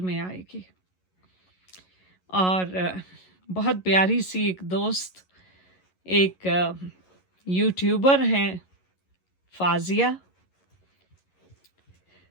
में आएगी। और बहुत प्यारी सी एक दोस्त, एक यूट्यूबर हैं, फाजिया।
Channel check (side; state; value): right; late; 11 ms